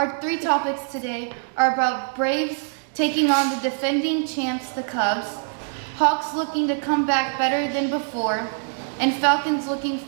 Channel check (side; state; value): left; silent; digital silence